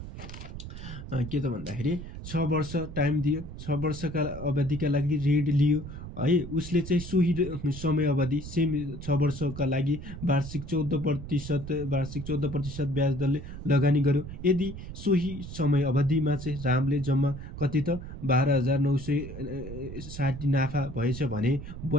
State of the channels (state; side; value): noise; right; rumble, 10 dB below the sound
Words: के त भन्दाखेरि 6 वर्ष टाइम दियो, 6 वर्षका अवधिका लागि ऋण लियो है। उसले चाहिँ सोही समय अवधि सेम 6 वर्षका लागि वार्षिक 14% ब्याज दरले लगानी गर्यो। यदि सोही समय अवधिमा चाहिँ रामले जम्मा कति त 12,960 नाफा भएछ भने